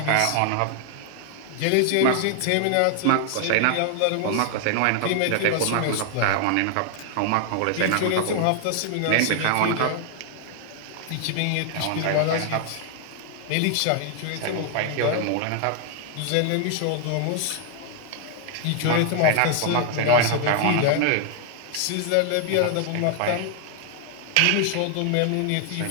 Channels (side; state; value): both; different; correlation 0.00